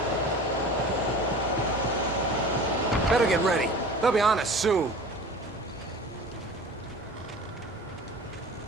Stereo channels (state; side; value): normal; both; correlation 0.39